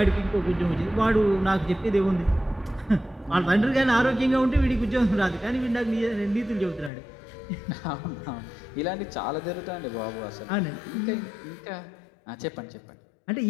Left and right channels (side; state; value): right; drops out; at 6.9 s